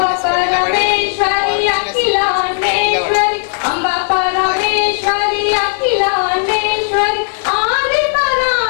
పరమేశ్వరి అఖిలాండేశ్వరి అంబ పరమేశ్వరి అఖిలాండేశ్వరి ఆది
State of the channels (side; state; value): right; silent; digital silence